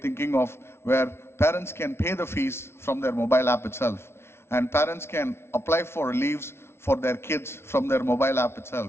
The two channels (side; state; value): right; late; 0.12 ms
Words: thinking of where parents can pay the fees from their mobile app itself. And parents can apply for leaves for their kids from their mobile app